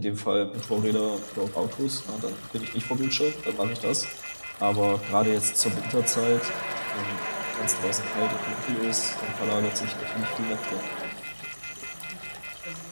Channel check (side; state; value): both; inverted; correlation -1.00